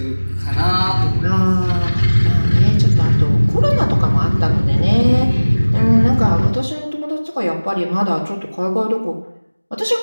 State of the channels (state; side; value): inverted; both; correlation -1.00